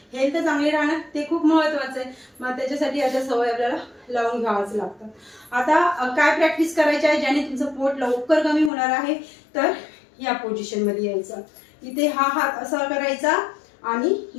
हेल्थ चांगली राहणं ते खूप महत्वाचं आहे। मग त्याच्यासाठी अशा सवय आपल्याला लावून घ्यावाच लागतं। आता काय प्रॅक्टिस करायची आहे ज्याने तुमचं पोट लवकर कमी होणार आहे, तर या पोझिशन मध्ये यायचं। इथे हा हात असा करायचा आणि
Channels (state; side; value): drops out; right; at 8.7 s